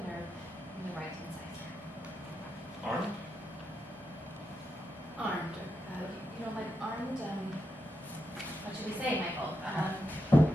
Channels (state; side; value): normal; both; correlation 0.86